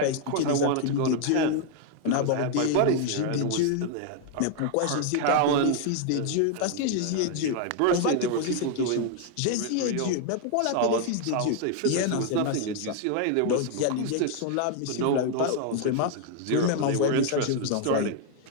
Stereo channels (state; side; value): different; both; correlation 0.00